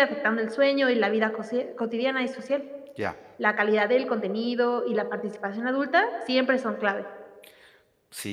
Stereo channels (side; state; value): both; identical; correlation 1.00